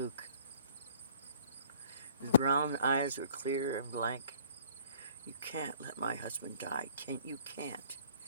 His brown eyes were clear and blank. You can't let my husband die. You can't.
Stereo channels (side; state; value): both; inverted; correlation -0.54